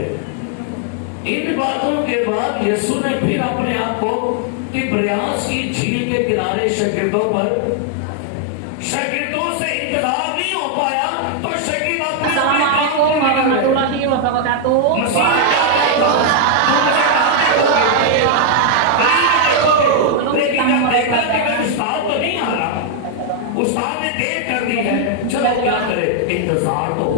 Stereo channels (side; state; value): both; different; correlation 0.00